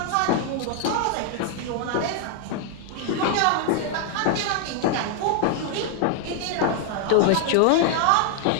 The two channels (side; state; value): both; different; correlation 0.00